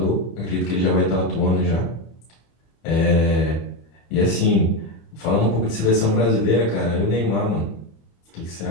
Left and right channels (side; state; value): right; late; 25 ms